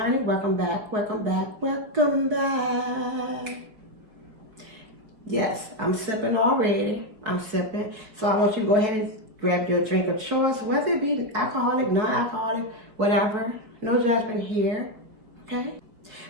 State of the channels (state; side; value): late; left; 4.9 ms